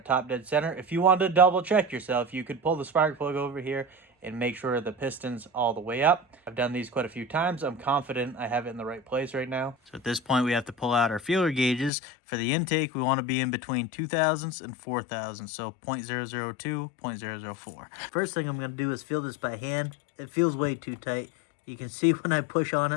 top dead center. If you wanted to double check yourself, you could pull the spark plug over here and make sure the piston's all the way up. I've done these quite a few times. I'm confident I have it in the right place right now. So at this point, we have to pull out our feeler gauges. For the intake, we want to be in between 2000s and 4000s, so 0.002, 0.004. First thing I'm going to do is feel this by hand. It feels way too tight. You can see when I push on it,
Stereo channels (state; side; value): drops out; right; at 11.9 s